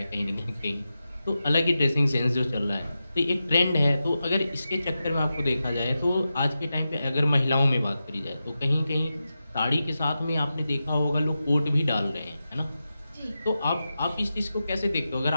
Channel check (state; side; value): inverted; both; correlation -0.91